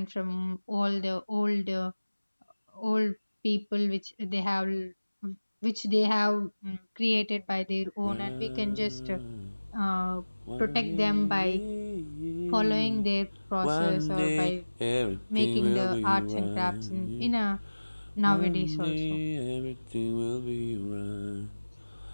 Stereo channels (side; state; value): both; inverted; correlation -1.00